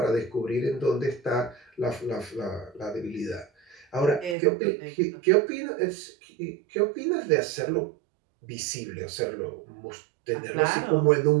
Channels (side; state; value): left; drops out; at 4.4 s